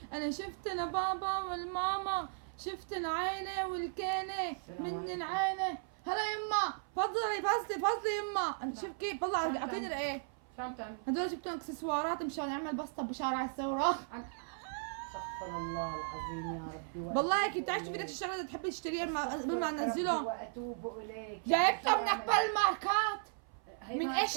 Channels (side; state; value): left; silent; 54 dB below the other